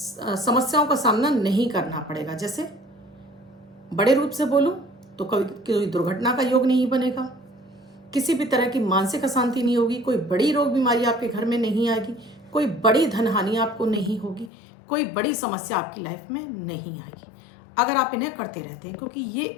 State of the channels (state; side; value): drops out; right; at 14.5 s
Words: का सामना नहीं करना पड़ेगा। जैसे बड़े रूप से बोलूं तो कभी कोई दुर्घटना का योग नहीं बनेगा, किसी भी तरह की मानसिक अशांति नहीं होगी, कोई बड़ी रोग बीमारी आपके घर में नहीं आएगी, कोई बड़ी धन हानि आपको नहीं होगी, कोई बड़ी समस्या आपकी लाइफ में नहीं आएगी अगर आप इन्हें करते रहते हैं। क्योंकि